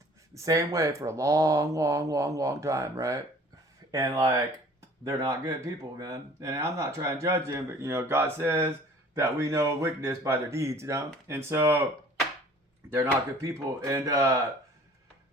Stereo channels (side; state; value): both; normal; correlation 0.50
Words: the same way for a long, long, long, long time, right? And like, they're not good people, man. And I'm not trying to judge them, but God says that we know wickedness by their deeds, And so they're not good people. And